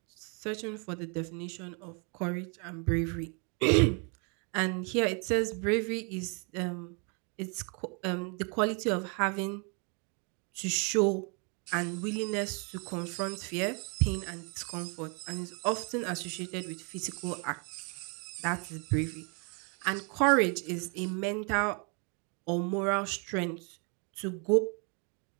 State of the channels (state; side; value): quieter; left; 35.9 dB